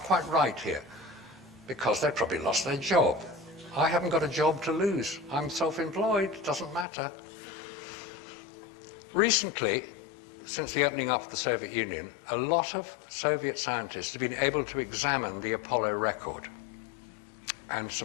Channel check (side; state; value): right; drops out; at 6.9 s